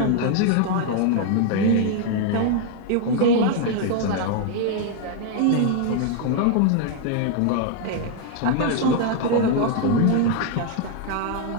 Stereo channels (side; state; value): both; different; correlation 0.00